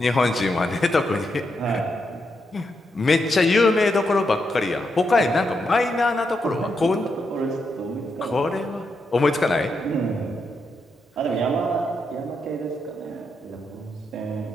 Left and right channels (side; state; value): both; normal; correlation 0.83